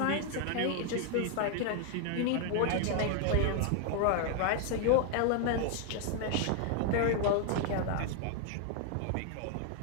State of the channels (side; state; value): both; different; correlation 0.00